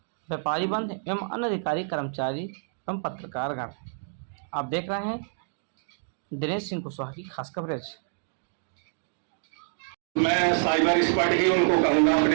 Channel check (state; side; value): silent; left; digital silence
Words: व्यापारी बंद एवं अन्य अधिकारी कर्मचारी एवं पत्रकारगण। आप देख रहे हैं दिनेश सिंह कुशवाहा की खास कवरेज। मैं साइबर स्क्वाड ही उनको कहूंगा